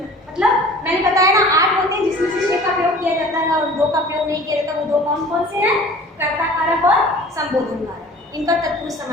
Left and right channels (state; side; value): normal; both; correlation 0.45